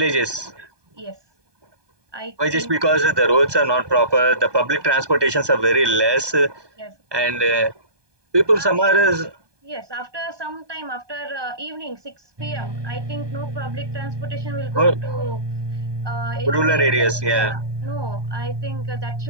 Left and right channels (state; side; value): late; left; 1.2 ms